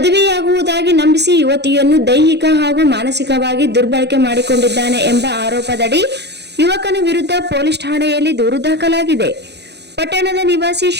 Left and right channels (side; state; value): left; late; 0.49 ms